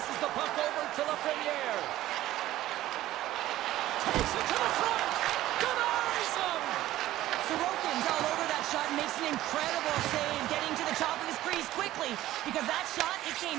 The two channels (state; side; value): quieter; left; 14.8 dB